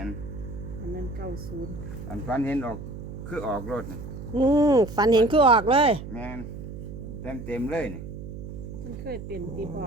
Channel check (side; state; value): right; noise; hum, 10 dB below the sound